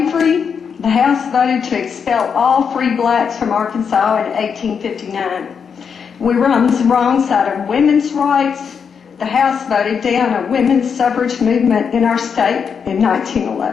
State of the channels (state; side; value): quieter; right; 6.6 dB